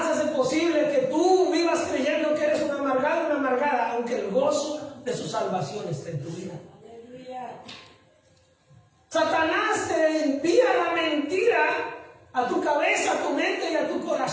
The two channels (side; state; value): both; identical; correlation 1.00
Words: hace posible que tú vivas creyendo que eres un amargado, una amargada, aunque el gozo de su salvación esté en tu vida. Satanás te envía la mentira a tu cabeza, a tu mente y a tu